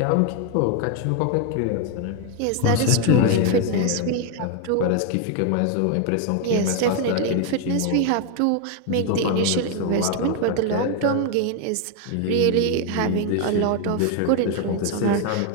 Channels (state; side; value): different; both; correlation 0.01